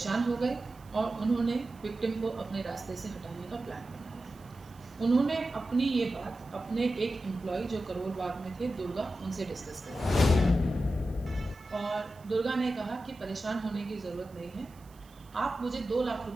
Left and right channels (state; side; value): noise; right; hiss, 27 dB below the sound